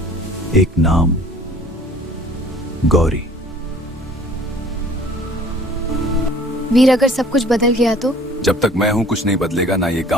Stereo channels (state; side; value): normal; both; correlation 0.52